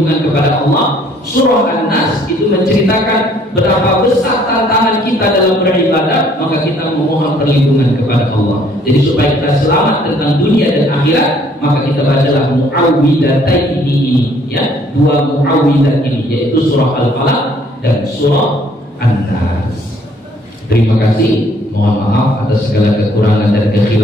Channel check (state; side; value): normal; both; correlation 0.62